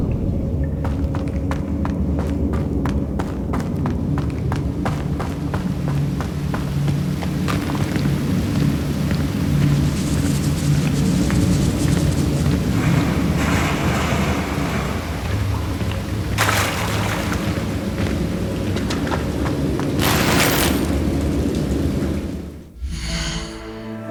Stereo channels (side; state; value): both; identical; correlation 1.00